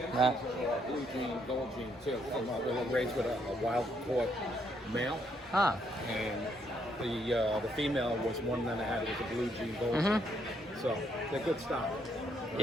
Blue jean, gold jean too. They were raised with a wild caught male, Huh. and the female was one that I had. It was a blue jean, gold jean. So they're good stock.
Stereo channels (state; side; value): normal; both; correlation 0.73